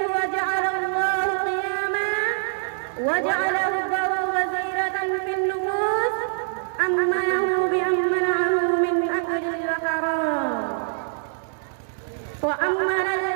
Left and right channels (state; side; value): silent; left; digital silence